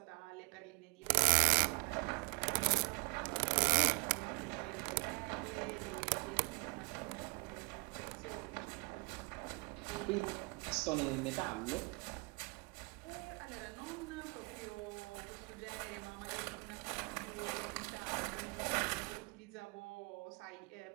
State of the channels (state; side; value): quieter; left; 30.5 dB